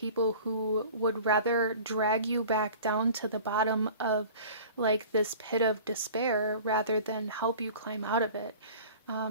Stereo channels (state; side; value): inverted; both; correlation -0.42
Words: who would rather drag you back down to the bottom of like this pit of despair rather than help you climb out of it,